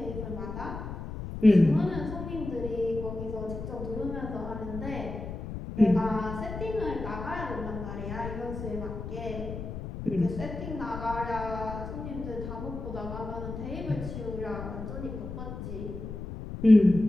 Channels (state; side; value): noise; left; rumble, 8 dB below the sound